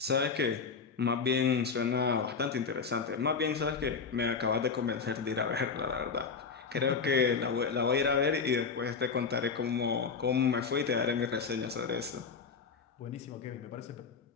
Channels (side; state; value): right; quieter; 5.4 dB